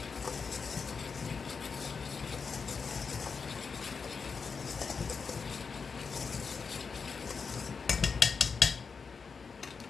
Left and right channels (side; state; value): right; quieter; 5.4 dB